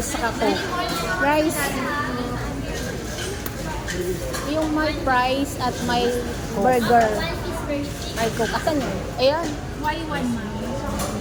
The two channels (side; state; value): both; identical; correlation 1.00